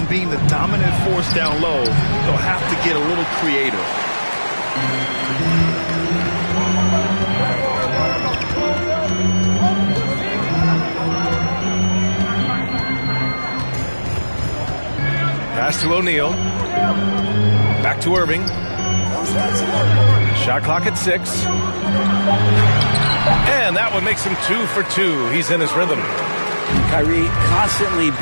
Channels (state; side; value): inverted; both; correlation -1.00